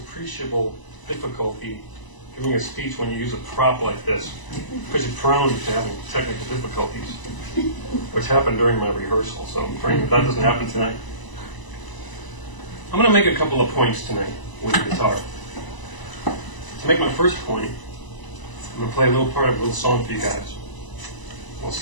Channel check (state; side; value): late; right; 1.0 ms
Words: difficulty giving a speech when you use a prop like this, because you're prone to having technical difficulties, which happened during my rehearsal, so I'm praying that doesn't happen tonight. I'm going to make a couple of points tonight with the guitar. To make my first point, I'm going to play a little part of a little song for you guys. We'll